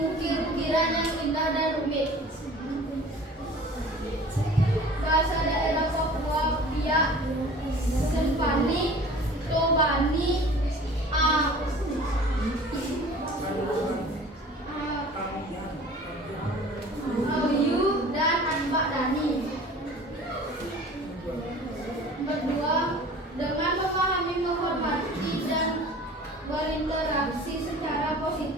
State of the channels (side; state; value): both; normal; correlation 0.44